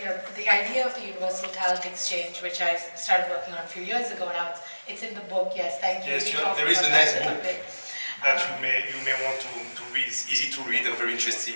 the idea of the universal talent exchange, which I started working on a few years ago now, it's in the book. Yes, thank you. Yes, there is a nice book that you may want to read. It's easy to read and very interesting.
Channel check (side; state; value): both; inverted; correlation -1.00